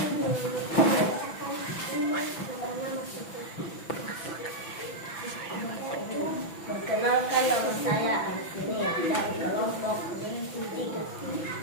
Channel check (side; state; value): right; late; 6.0 ms